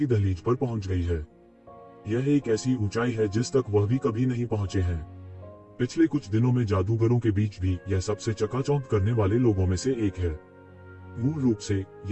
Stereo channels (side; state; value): both; identical; correlation 1.00